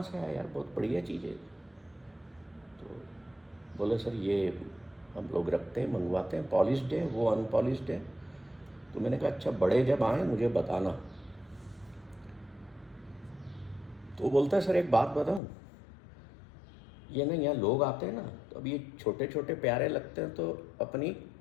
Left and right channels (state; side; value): drops out; right; at 15.4 s